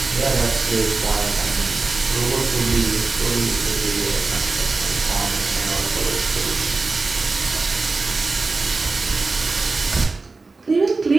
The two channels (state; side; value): quieter; left; 3.8 dB